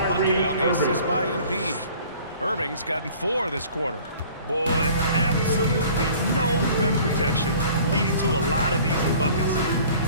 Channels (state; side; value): inverted; both; correlation -0.50